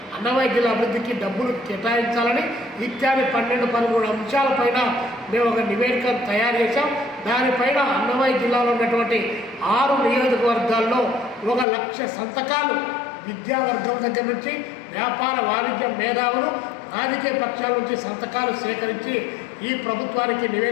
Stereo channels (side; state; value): right; drops out; at 11.7 s